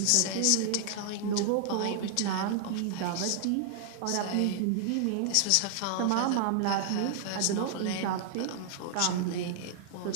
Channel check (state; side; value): different; both; correlation -0.01